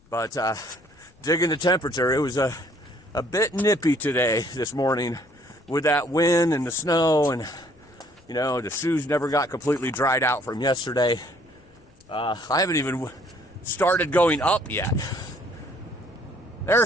But digging the temperature, it was a bit nippy today, this morning, with that wind and the snow, and the shoes never got completely dried out from yesterday. I haven't even started going up yet.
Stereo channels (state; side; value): noise; left; rumble, 29 dB below the sound